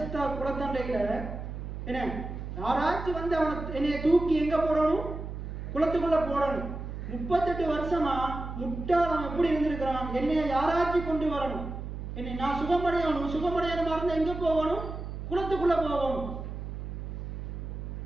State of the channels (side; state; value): right; noise; hum, 7 dB below the sound